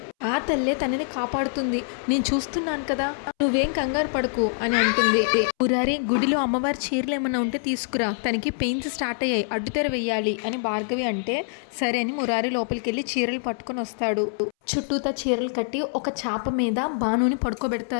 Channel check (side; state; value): right; silent; 62 dB below the other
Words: ఆ తల్లే తనని కాపాడుతుంది, నేను చూస్తున్నాను కదా, నువ్వేం కంగారు పడకు అని అంటుంది. మురారి, గుడిలో అమ్మవారి చీరలు ఏమన్నా ఉంటే తీసుకురా, తనకి పెయిన్స్ స్టార్ట్ అయ్యాయి, అడ్డుతెర వెయ్యాలి అని భార్గవి అంటే సరే అని మురారి లోపలికి వెళ్ళి చీరలు పట్టుకొని వస్తాడు. చుట్టూతా చీరలు కట్టి ఒక చాప మీద బానుని